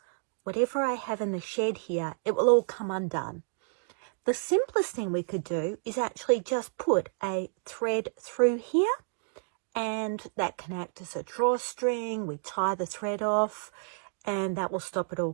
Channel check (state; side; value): silent; left; digital silence